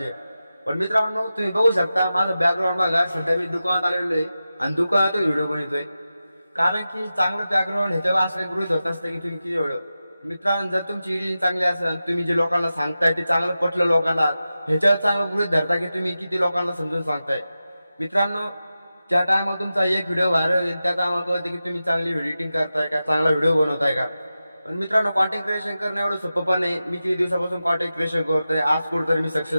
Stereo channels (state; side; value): inverted; both; correlation -0.93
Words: पण मित्रांनो, तुम्ही बघू शकता माझं बॅकग्राऊंड बघा. सध्या मी दुकानात आलेलो आहे आणि दुकानातून व्हिडिओ बनवतोय. कारण की चांगलं बॅकग्राऊंड ह्याच्यावर असं गृहीत होत असतं की तुम्ही किती व्हिडिओ. मित्रांनो, जर तुमची एडिटिंग चांगली असेल, तुम्ही जे लोकांना सांगताय ते चांगलं पटलं लोकांना, ह्याच्यावर चांगलं गृहीत धरता की तुम्ही किती लोकांना समजून सांगताय. मित्रांनो, ज्या टायमाला तुमचा एक व्हिडिओ व्हायरल होईल त्या टायमाला कळते की तुम्ही चांगली एडिटिंग करताय का, चांगला व्हिडिओ बनवताय का. पण मित्रांनो, कॉन्टेंट क्रिएशन करणं एवढं सोपं पण नाही. मी किती दिवसापासून कॉन्टेंट क्रिएशन करतोय, आज कुठेतरी मी